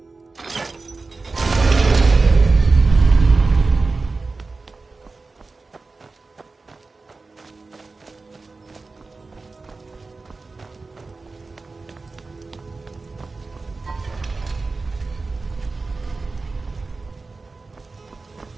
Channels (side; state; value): left; quieter; 3.8 dB